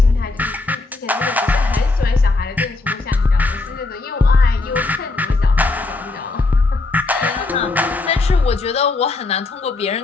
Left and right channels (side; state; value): right; quieter; 3.4 dB